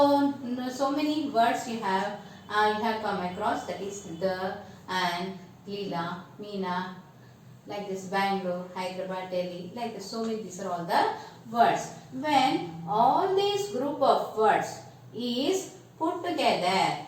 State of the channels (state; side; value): identical; both; correlation 1.00